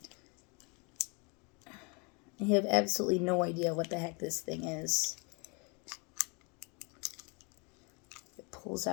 I have absolutely no idea what the heck this thing is. Pulls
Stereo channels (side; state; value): right; quieter; 31.6 dB